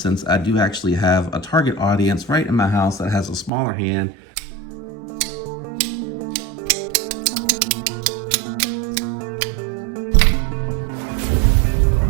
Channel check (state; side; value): drops out; left; at 3.5 s